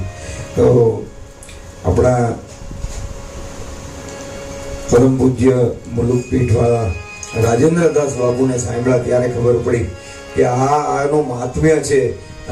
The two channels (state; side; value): identical; both; correlation 1.00